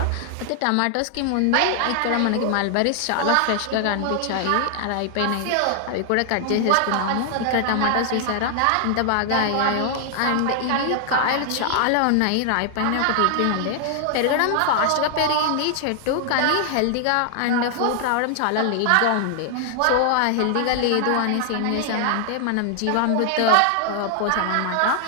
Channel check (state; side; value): different; both; correlation 0.00